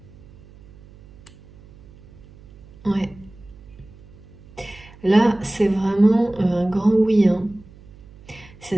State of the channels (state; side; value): noise; right; hum, 23 dB below the sound